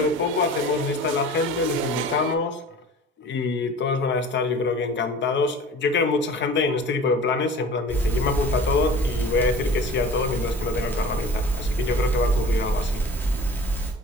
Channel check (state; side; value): normal; both; correlation 0.41